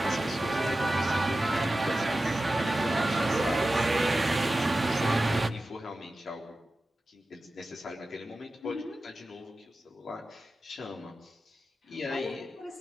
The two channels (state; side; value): normal; both; correlation 0.94